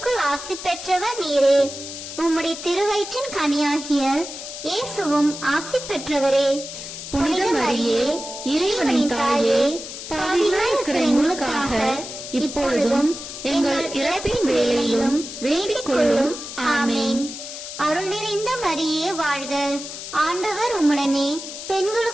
ஆசி பெற்றவர் நீரே. உம்முடைய திருவயிற்றின் கனியாகிய இயேசுவும் ஆசி பெற்றவரே. புனித மரியே இறைவனின் தாயே, பாவிகளாய் இருக்கிற எங்களுக்காக இப்பொழுதும் எங்கள் இறப்பின் வேளையிலும் வேண்டிக் கொள்ளும். ஆமேன். அருள் நிறைந்த மரியே வாழ்க. ஆண்டவர் உம்முடனே,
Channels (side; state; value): left; noise; hiss, 10 dB below the sound